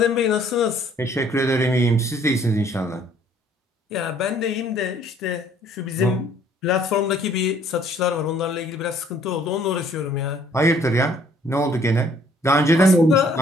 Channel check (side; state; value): both; normal; correlation 0.60